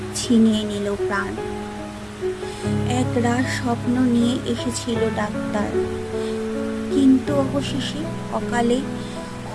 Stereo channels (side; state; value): both; identical; correlation 1.00